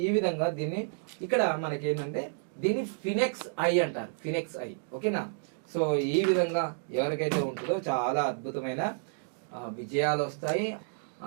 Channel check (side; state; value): left; silent; digital silence